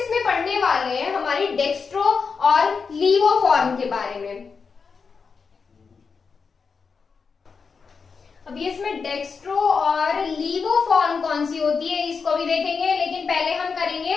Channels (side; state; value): right; quieter; 5.3 dB